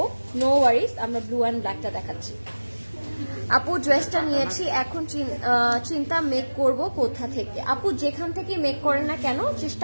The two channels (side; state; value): both; inverted; correlation -1.00